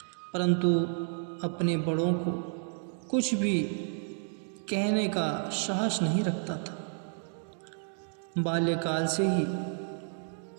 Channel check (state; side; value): silent; left; 57 dB below the other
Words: परंतु अपने बड़ों को कुछ भी कहने का साहस नहीं रखता था। बाल्यकाल से ही